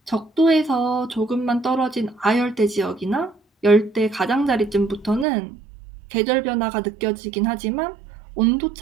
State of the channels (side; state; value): left; drops out; at 5.2 s